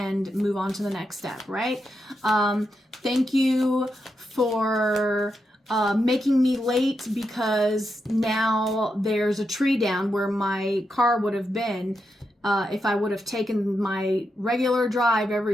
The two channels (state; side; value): normal; both; correlation 0.85